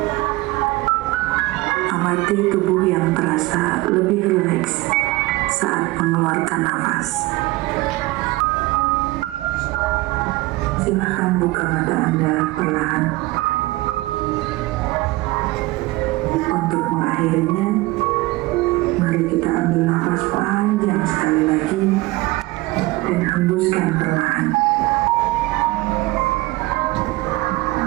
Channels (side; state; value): left; quieter; 20.6 dB